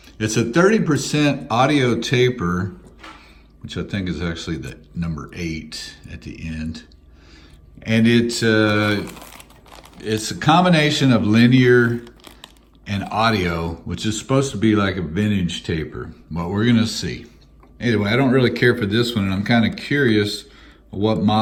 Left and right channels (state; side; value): identical; both; correlation 1.00